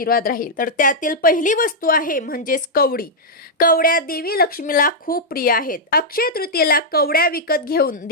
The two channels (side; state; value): both; normal; correlation -0.05